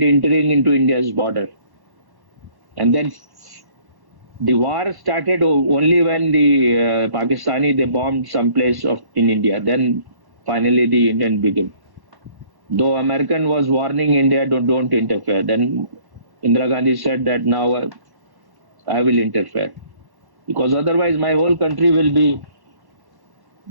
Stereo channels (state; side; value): late; left; 1.1 ms